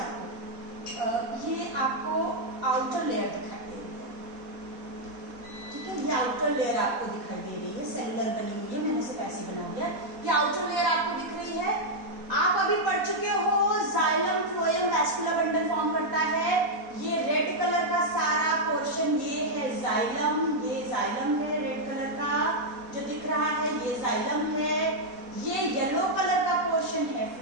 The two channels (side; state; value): left; late; 4.2 ms